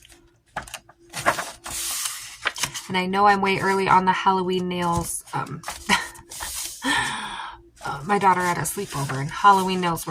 And I know I'm way early on the Halloween nails. My daughter had a sleepover and Halloween nails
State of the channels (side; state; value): both; identical; correlation 1.00